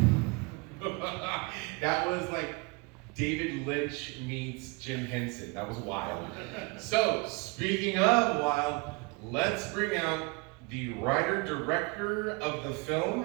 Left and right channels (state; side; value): quieter; left; 28.9 dB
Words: That was like David Lynch meets Jim Henson. That was wild. So, speaking of wild, let's bring out the writer-director of the